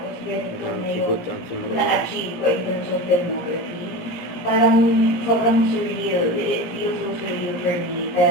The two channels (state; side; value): late; right; 17 ms